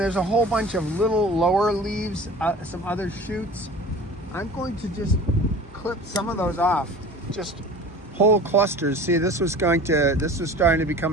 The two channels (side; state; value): both; normal; correlation 0.40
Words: a whole bunch of little lower leaves, some other shoots. I'm going to just clip some of those off, just whole clusters. See, this was starting to